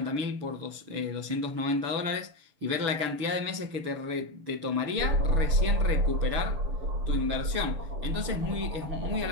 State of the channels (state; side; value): late; left; 6.7 ms